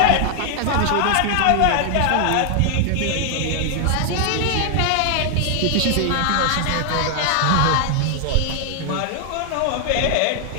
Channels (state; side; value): different; both; correlation 0.00